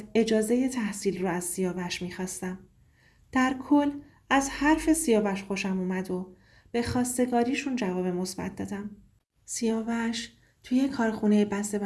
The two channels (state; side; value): identical; both; correlation 1.00